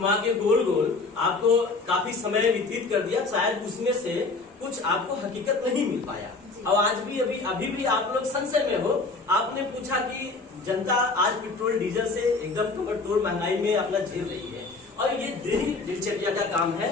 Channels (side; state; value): right; quieter; 3.8 dB